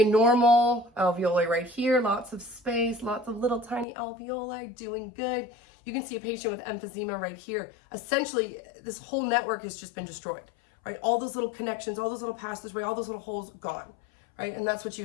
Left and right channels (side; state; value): right; drops out; at 3.9 s